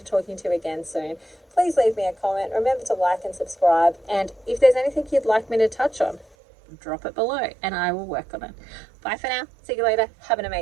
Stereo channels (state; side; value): drops out; left; at 6.4 s